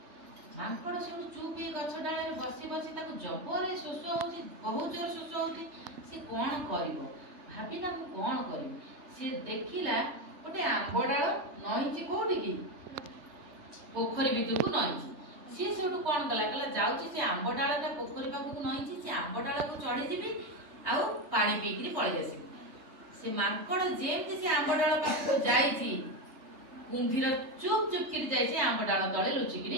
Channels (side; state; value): left; late; 3.3 ms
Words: मांकड़ सब चुप ये गछ डाले रे बसी बसी ताको जबरे शोष होछि बहुत जोर शोष होछि। से कौन करिवो भाबिला मु कौन करिवो। से देखिला गोटे आंब डाल नईची कोठी की पोखरी भितर को नईची। सी से कौन कला कला जाउची से आंब डालटा पोखरी पाखु नईची से आंब डाल को चढ़ी जीबी आउ पानी पीकरी पळै आसीबी। से मांकड़ जेमती से आंब डाल पाखु जाईची कुंभीर चुप चुप करी जाईची आंब डाल तळे